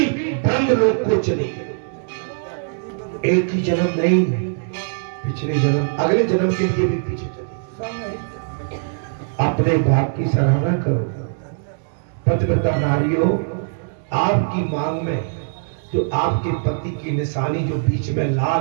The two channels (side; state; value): left; silent; digital silence